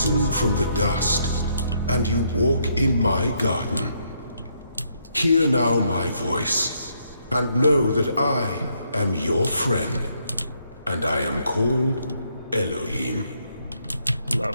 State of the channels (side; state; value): both; inverted; correlation -0.73